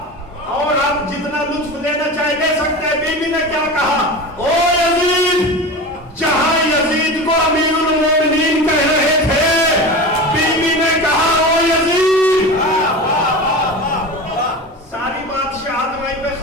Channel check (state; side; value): normal; both; correlation 0.29